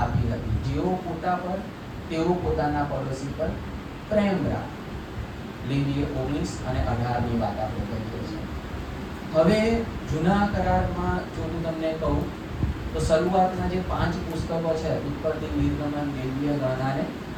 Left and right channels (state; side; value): identical; both; correlation 1.00